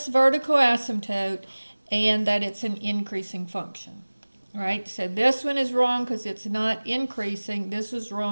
vertical asymptote, and that it's an increasing function. All right, so this one is wrong because it's not increasing. This is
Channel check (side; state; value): both; inverted; correlation -1.00